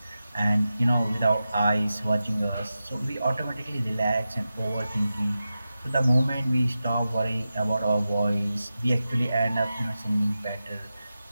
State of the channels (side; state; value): both; inverted; correlation -0.92